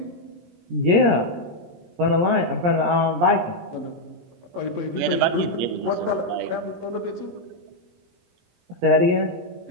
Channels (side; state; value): left; late; 17 ms